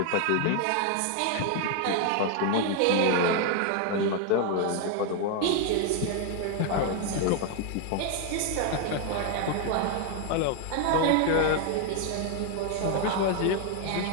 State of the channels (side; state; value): both; different; correlation 0.00